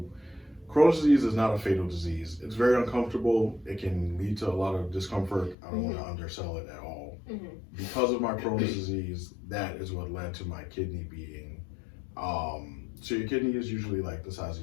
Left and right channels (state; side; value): drops out; right; at 5.6 s